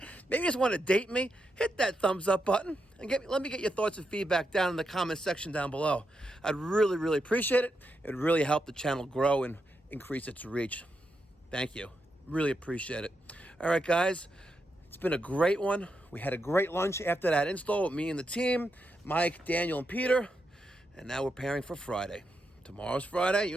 maybe you just want to date me, hit that thumbs up button and let me get your thoughts and feedback down in the comment section down below. I'd really, really appreciate it. It would really help the channel grow and increase its reach. Thank you. Really appreciate it. All right, guys. It's been a great one. We had a great lunch after that install with me and the team, Mike, Daniel, and Peter. And now we're preparing for Friday. Tomorrow's Friday. You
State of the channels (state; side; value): normal; both; correlation 0.84